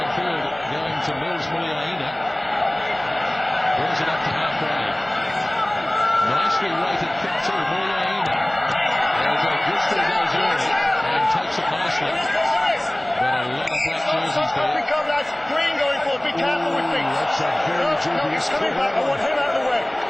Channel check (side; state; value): right; noise; hum, 29 dB below the sound